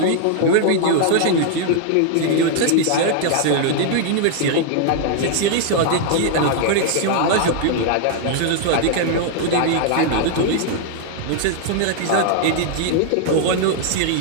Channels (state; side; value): different; both; correlation 0.00